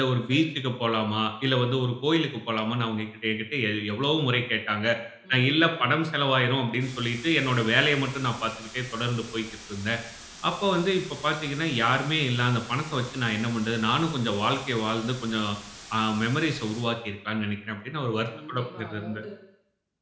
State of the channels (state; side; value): identical; both; correlation 1.00